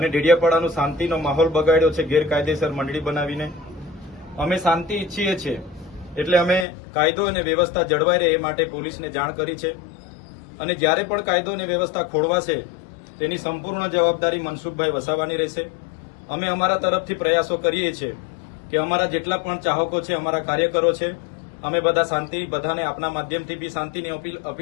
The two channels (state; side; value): drops out; right; at 6.7 s